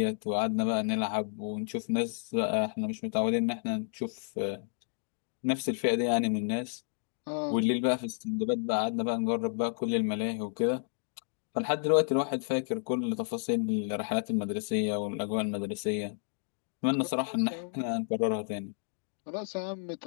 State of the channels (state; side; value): silent; right; digital silence